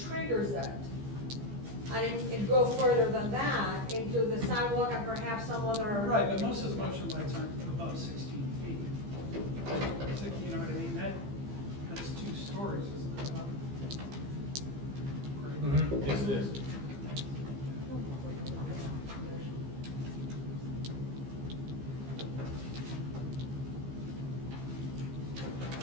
triggers it. And it go further than that into the sidewalk and perhaps some other. Right, but most of the motion lights aren't above 16 feet. You know what I mean? That's 2 stories, isn't it? About? Yes, it is.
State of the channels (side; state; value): left; late; 15 ms